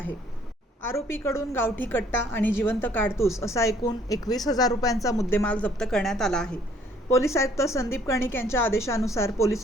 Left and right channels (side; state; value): both; normal; correlation 0.61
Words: आरोपीकडून गावठी कट्टा आणि जिवंत काडतूस असा एकूण 21,000 रुपयांचा मुद्देमाल जप्त करण्यात आला आहे। पोलीस आयुक्त संदीप कर्णिक यांच्या आदेशानुसार